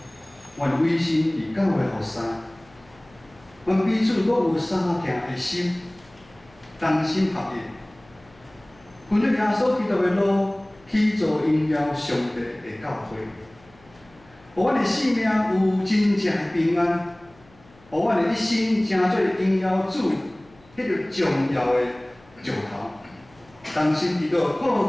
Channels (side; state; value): left; noise; hum, 28 dB below the sound